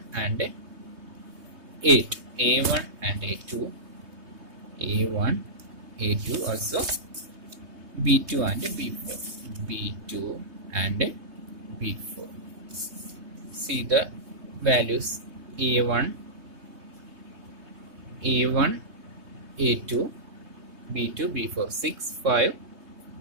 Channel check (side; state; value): left; late; 3.2 ms